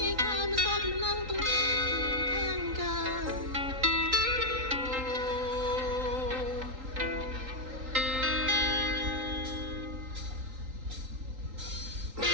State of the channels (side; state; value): left; late; 3.8 ms